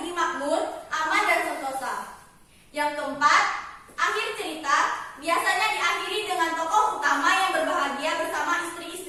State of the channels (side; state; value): both; identical; correlation 1.00